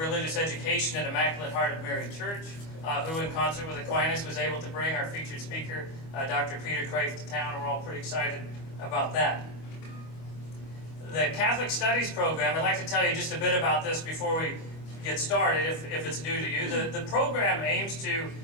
Education at Immaculate Heart of Mary Church, who in concert with Aquinas was able to bring our featured speaker, Dr. Peter Kreeft, to town, and we're all pretty excited about that. The Catholic Studies program, I'd like to tell you just a bit about this before we get started, if it's new to you. The program aims to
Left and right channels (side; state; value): right; late; 25 ms